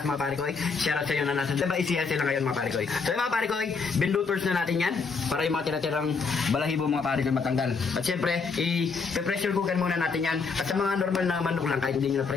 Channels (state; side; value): quieter; right; 4.9 dB